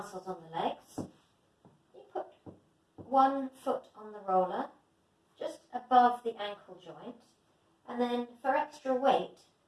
on the legs. You put one foot on the roller, just above the ankle joint, and then for extra weight,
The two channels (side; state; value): both; identical; correlation 1.00